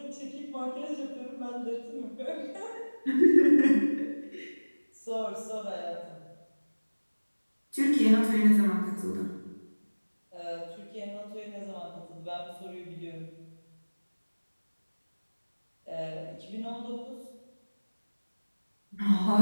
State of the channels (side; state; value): both; inverted; correlation -1.00